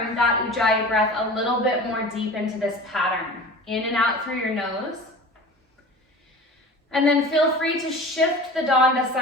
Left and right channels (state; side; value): normal; both; correlation 0.37